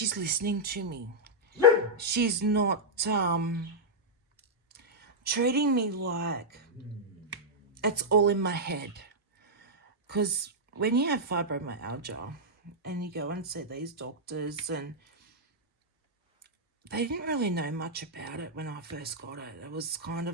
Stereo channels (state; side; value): normal; both; correlation -0.07